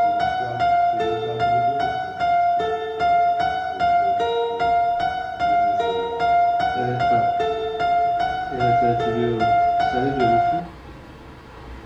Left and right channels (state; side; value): identical; both; correlation 1.00